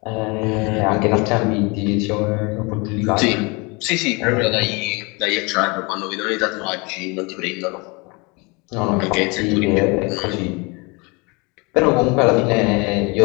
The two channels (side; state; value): right; quieter; 28.3 dB